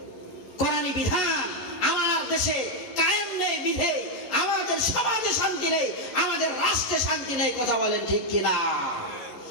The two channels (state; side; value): late; right; 11 ms